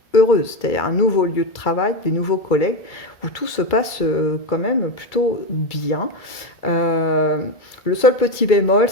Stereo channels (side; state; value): right; late; 1.8 ms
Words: heureuse, c'est-à-dire un nouveau lieu de travail, des nouveaux collègues, où tout se passe quand même plutôt bien. Le seul petit bémol,